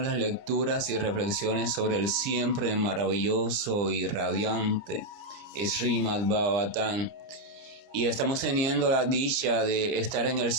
las lecturas y reflexiones sobre el siempre maravilloso y radiante Srimad Bhagavatam. Y estamos teniendo la dicha de estar en el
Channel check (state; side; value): late; left; 30 ms